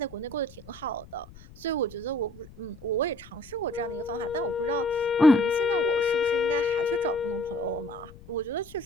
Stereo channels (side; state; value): left; noise; rumble, 20 dB below the sound